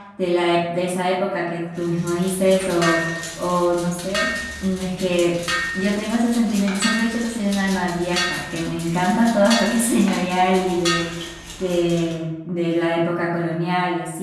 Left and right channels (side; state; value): both; identical; correlation 1.00